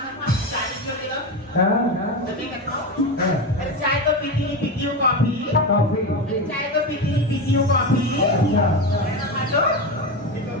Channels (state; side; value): normal; both; correlation 0.18